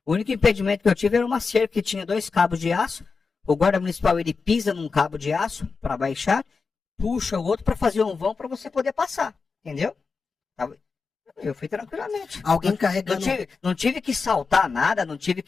O único impedimento que eu tive era uma cerca que tinha 2 cabos de aço. O guarda municipal, ele pisa num cabo de aço para baixar, puxa o outro para fazer um vão para você poder passar, entendeu? Eu fui tranquilamente. Alguém carregando... Não tive que saltar nada, não tive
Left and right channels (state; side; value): quieter; right; 4.8 dB